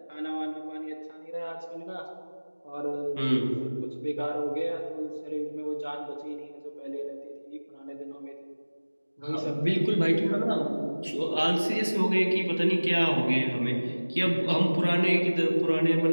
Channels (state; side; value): inverted; both; correlation -1.00